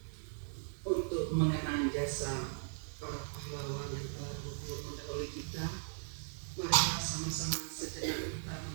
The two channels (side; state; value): left; silent; 52 dB below the other